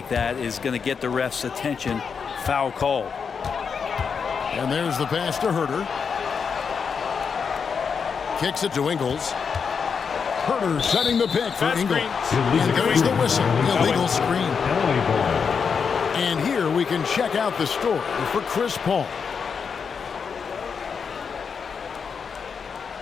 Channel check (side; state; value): right; quieter; 6.1 dB